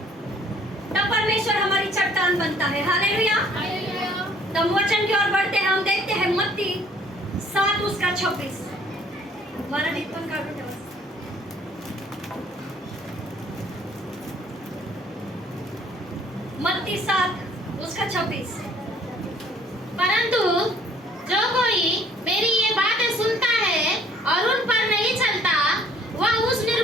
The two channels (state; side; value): normal; both; correlation 0.58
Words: तब परमेश्वर हमारी चट्टान बनता है। हालेलुया। तब वचन की ओर बढ़ते हैं। हम देखते हैं मत्ती 7:26। मत्ती 7:26। परंतु जो कोई मेरी ये बातें सुनता है और उन पर नहीं चलता वह उस